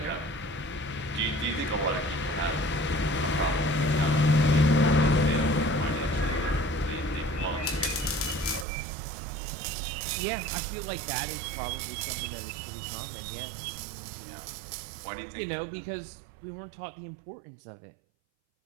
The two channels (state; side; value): drops out; left; at 8.7 s